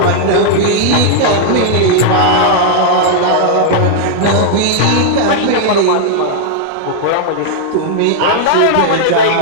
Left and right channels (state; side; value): different; both; correlation -0.01